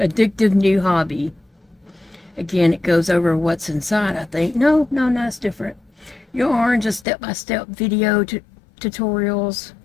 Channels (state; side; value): drops out; right; at 7.1 s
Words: new hobby. Again, it goes over what's inside, I think. No, it's different. Yarn, just step-by-step video tutorials.